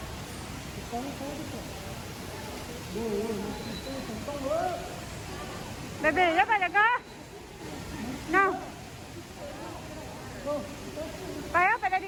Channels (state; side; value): identical; both; correlation 1.00